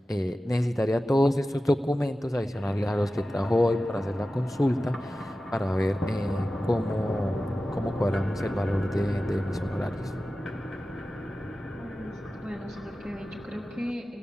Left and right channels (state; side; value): normal; both; correlation 0.95